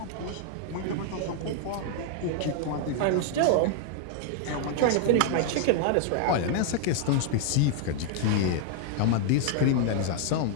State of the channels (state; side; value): different; both; correlation 0.00